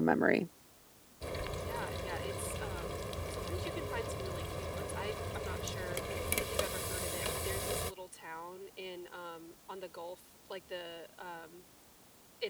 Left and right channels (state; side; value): identical; both; correlation 1.00